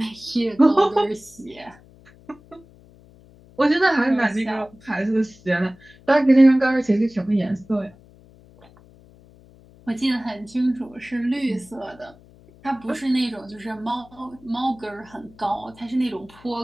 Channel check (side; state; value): left; noise; hum, 25 dB below the sound